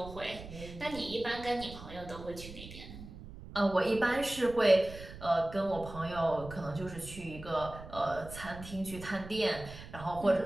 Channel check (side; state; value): right; noise; rumble, 13 dB below the sound